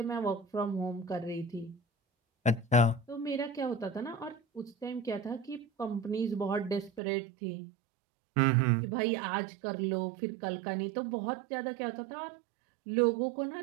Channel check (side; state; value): left; drops out; at 7.0 s